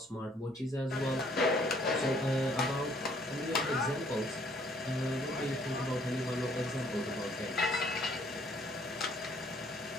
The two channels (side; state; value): both; normal; correlation 0.62